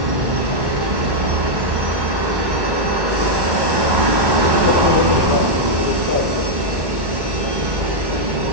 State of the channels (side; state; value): left; late; 1.1 ms